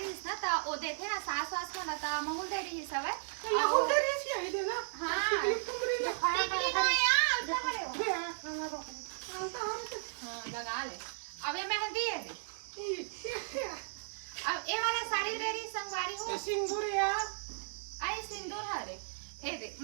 ना त ओ देखे ना सास वास को ना त महूल दे रही सब है ये हो दे रही है ये देना हां तुमरी ले खाया टिकली तो यार उल्टा खड़े हो हां लगा ले अब ये मेहंदी है दे अब ये वाला साड़ी दे रही संगवारी हो सिंदूर यार आई सिंदूर हरे ए दे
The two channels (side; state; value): left; silent; digital silence